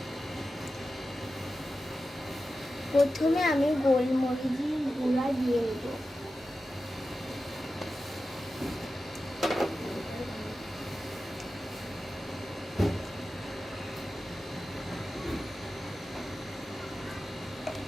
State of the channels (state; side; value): normal; both; correlation 0.93